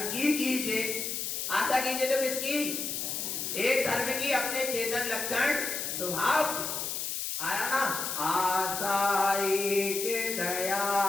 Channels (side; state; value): left; noise; hiss, 3 dB below the sound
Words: की कीजिए। आशा कीजिए तो किसकी? एक धर्म की, अपने चेतन लक्षण स्वभाव। आया ना? आशा एक